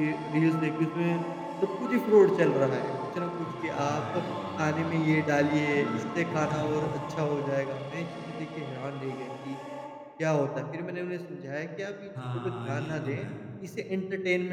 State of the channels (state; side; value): identical; both; correlation 1.00